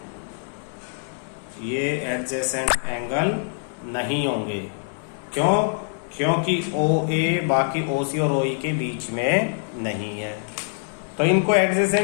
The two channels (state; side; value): silent; right; 62 dB below the other